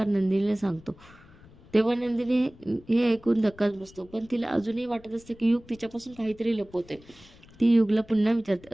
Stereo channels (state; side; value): noise; left; rumble, 24 dB below the sound